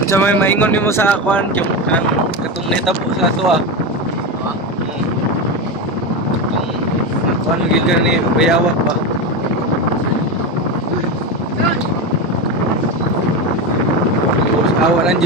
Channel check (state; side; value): normal; both; correlation 0.17